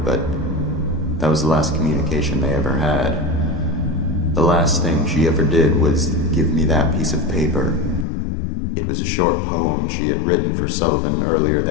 but that was the last communication they ever had. The last thing she ever did was give me that piece of paper. It was a short poem she had written for Sullivan earlier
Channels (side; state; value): right; drops out; at 8.1 s